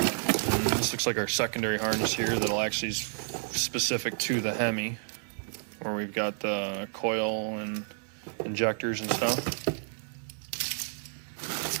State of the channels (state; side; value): silent; left; 58 dB below the other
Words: this looks like our secondary harness here that'll actually is specific to the Hemi, where we've got the coil and injectors and stuff.